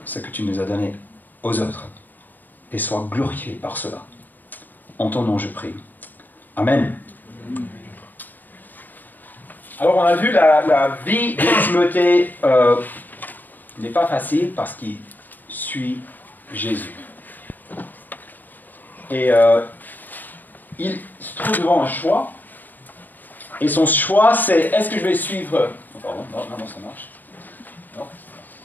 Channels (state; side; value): late; right; 0.088 ms